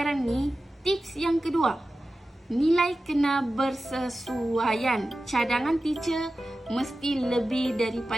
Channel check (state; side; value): normal; both; correlation 0.94